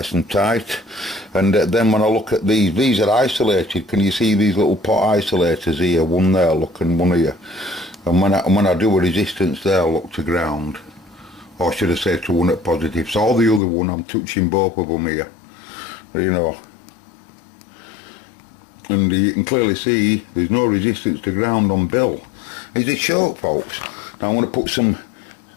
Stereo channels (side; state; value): right; drops out; at 13.6 s